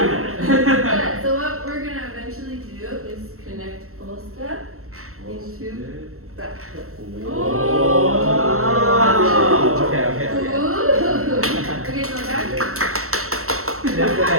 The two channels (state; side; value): late; left; 0.63 ms